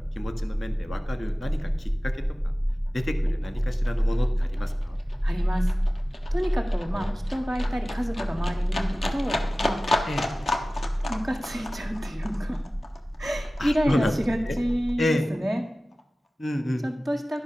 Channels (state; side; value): normal; both; correlation 0.97